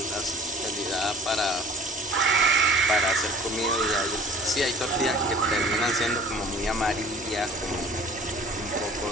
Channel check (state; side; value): normal; both; correlation 0.49